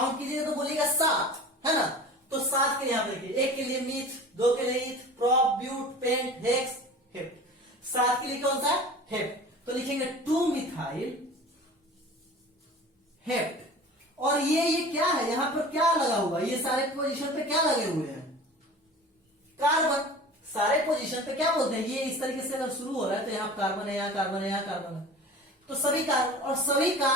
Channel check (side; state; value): both; normal; correlation 0.39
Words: कीजिएगा तो बोलिएगा 7, है ना। तो 7 के यहां देखिए, 1 के लिए मीथ, 2 के लिए eth, prop, but, pent, hex, hept. 7 के लिए कौन सा, हेप्ट। तो लिखेंगे 2 मिथाइल हेप्ट। और ये क्या है, यहां पर क्या लगा हुआ, ये सारे पोजीशन पे क्या लगे हुए हैं, कार्बन। सारे पोजीशन पे क्या बोलते हैं, ये इस तरीके से अगर शुरू हो रहा है तो यहां कार्बन है, यहां कार्बन है, यहां कार्बन है, तो सभी कार्बन। और सभी